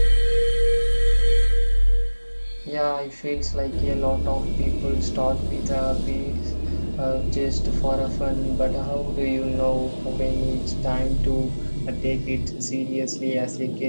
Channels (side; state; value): both; inverted; correlation -1.00